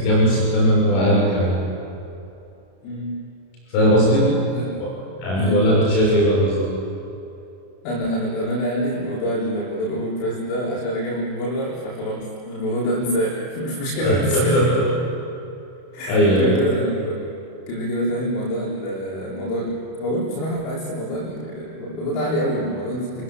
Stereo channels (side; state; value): right; late; 32 ms